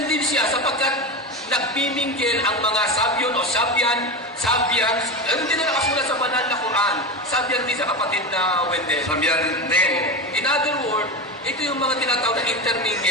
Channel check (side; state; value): both; normal; correlation 0.21